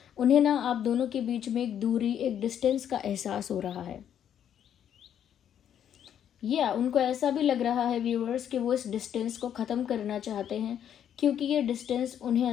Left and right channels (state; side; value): quieter; right; 9.5 dB